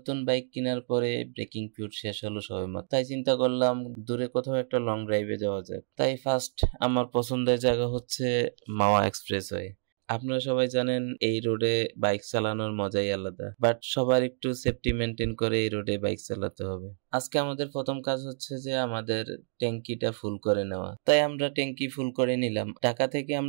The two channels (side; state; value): left; silent; digital silence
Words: বাইক কেনার পরে ব্রেকিং পিরিয়ড শেষ হলো সবেমাত্র, তাই চিন্তা করলাম দূরে কোথাও একটা লং ড্রাইভে যাওয়া যাক। তাই ফার্স্ট আমার পছন্দের জায়গা হচ্ছে মাওয়া এক্সপ্রেসওয়ে। আপনারা সবাই জানেন এই রোডে বাইক চালানোর মজাই আলাদা, বাট সবার একটু সেফটি মেনটেন করে এই রোডে বাইক চালাতে হবে। আজকে আমাদের প্রথম কাজ হচ্ছে যে আমাদের ট্যাঙ্কিটা ফুল করে নেওয়া, তাই আমরা ট্যাঙ্কি ফুল করে নিলাম। ঢাকা থেকে